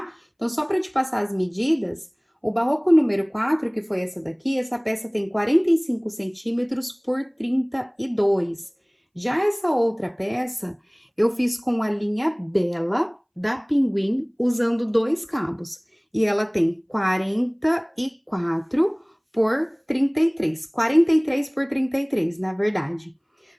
Então, só para te passar as medidas, o barroco número 4, que foi essa daqui, essa peça tem 45 centímetros por 32. Já essa outra peça, eu fiz com a linha Bela da Pinguim, usando 2 cabos. E ela tem 44 por 33. 43 por 33, na verdade.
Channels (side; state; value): both; identical; correlation 1.00